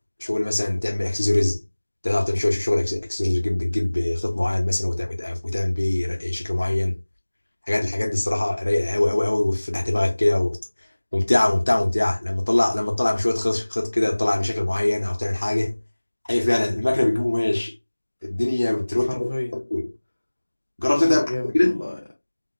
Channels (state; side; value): inverted; both; correlation -1.00